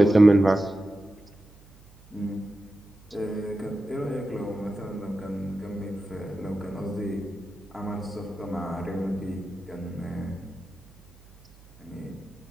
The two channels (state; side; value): noise; right; hum, 24 dB below the sound